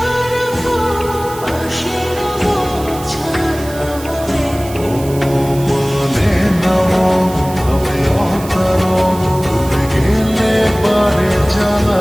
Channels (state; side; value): noise; right; hiss, 16 dB below the sound